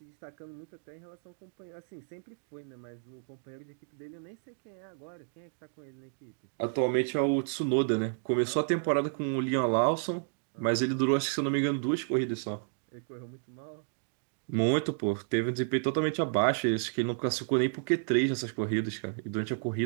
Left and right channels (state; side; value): silent; left; digital silence